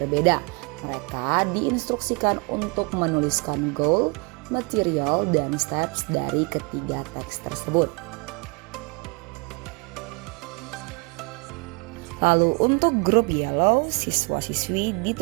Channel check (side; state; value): left; quieter; 29.8 dB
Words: Mereka diinstruksikan untuk menuliskan goal, material, dan steps dari ketiga teks tersebut. Lalu untuk grup yellow, siswa-siswi